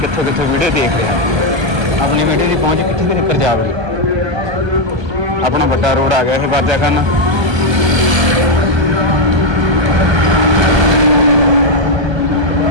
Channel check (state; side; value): late; left; 1.2 ms